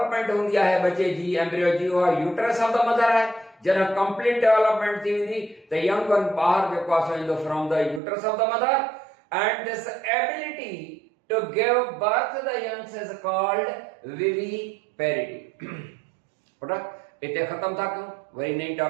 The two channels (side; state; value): left; drops out; at 8.0 s